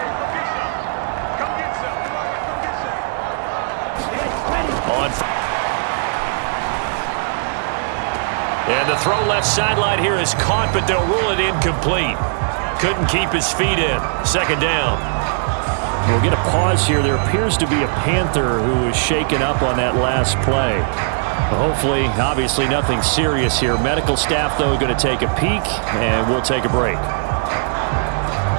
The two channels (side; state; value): left; silent; digital silence